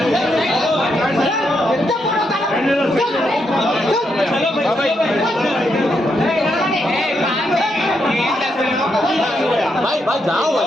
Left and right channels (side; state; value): both; normal; correlation 0.80